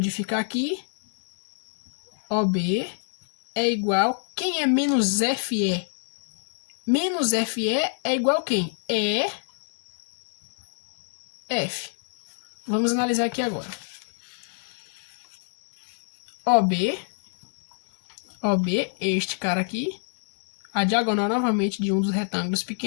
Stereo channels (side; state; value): right; silent; 60 dB below the other